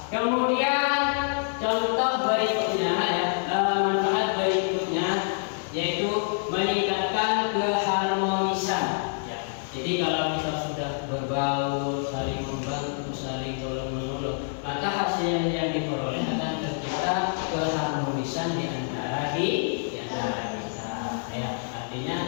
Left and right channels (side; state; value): right; silent; digital silence